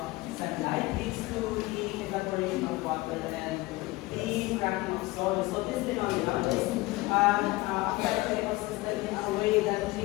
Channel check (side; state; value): right; quieter; 20.8 dB